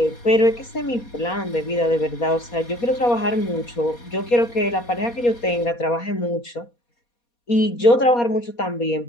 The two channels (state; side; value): late; right; 4.2 ms